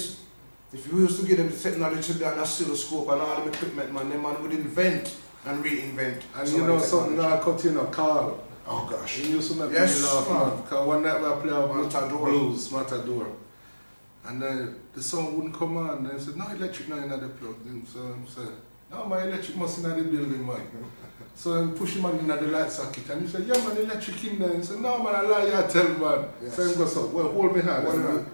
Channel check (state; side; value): inverted; both; correlation -1.00